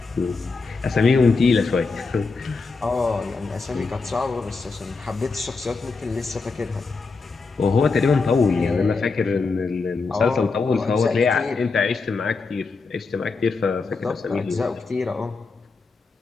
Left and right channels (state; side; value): quieter; right; 4.3 dB